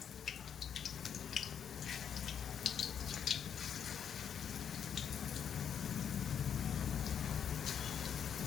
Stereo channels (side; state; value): right; quieter; 8.2 dB